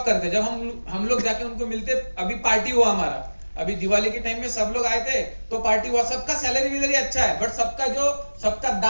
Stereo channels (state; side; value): inverted; both; correlation -1.00